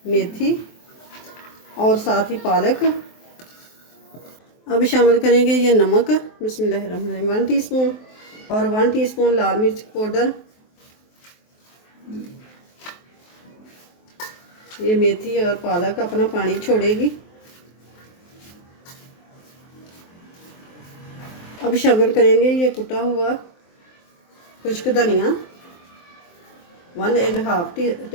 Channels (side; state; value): right; late; 23 ms